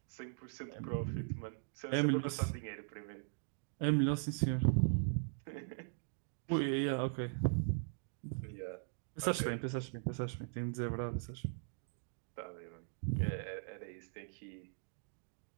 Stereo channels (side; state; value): left; silent; digital silence